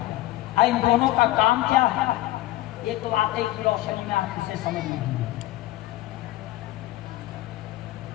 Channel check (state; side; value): quieter; right; 16.2 dB